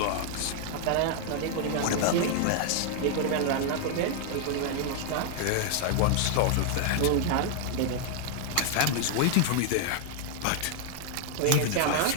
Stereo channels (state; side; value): different; both; correlation 0.00